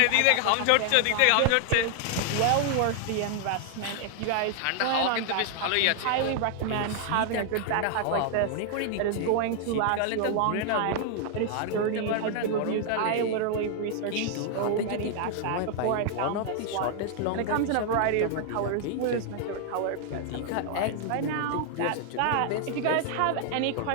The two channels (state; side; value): different; both; correlation 0.00